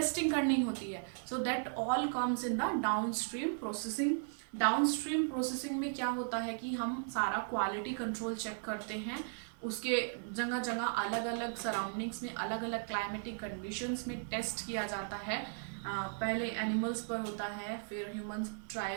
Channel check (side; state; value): left; silent; digital silence